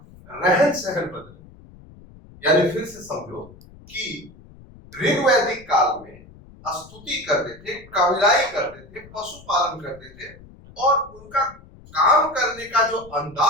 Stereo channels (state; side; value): noise; left; rumble, 22 dB below the sound